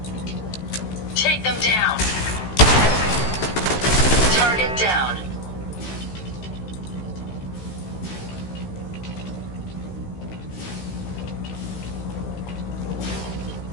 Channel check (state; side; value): late; right; 15 ms